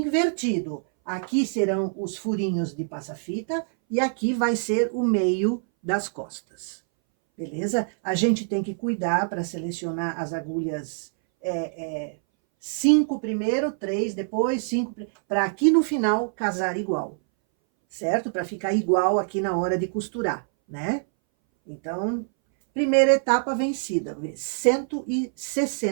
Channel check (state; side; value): silent; left; 61 dB below the other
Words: Aqui serão os furinhos de passa-fita e aqui vai ser o meio das costas. Beleza? A gente tem que cuidar para selecionar as agulhas 5 primeiro, 3 depois, 5, para aqui no final casar igual, certo? Para ficar igual aqui na hora de costurar, né? Então, primeira etapa vencida,